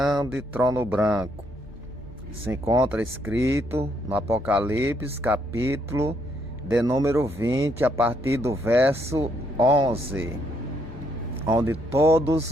trono branco. Se encontra escrito no Apocalipse, capítulo de número 20, a partir do verso 11, onde todos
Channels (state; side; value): normal; both; correlation 0.72